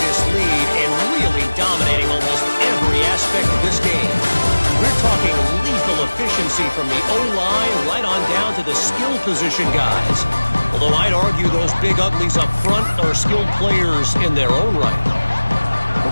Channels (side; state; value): both; inverted; correlation -1.00